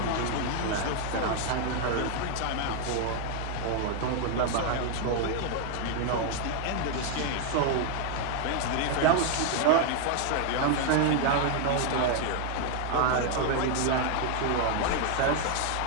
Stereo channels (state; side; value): different; both; correlation 0.00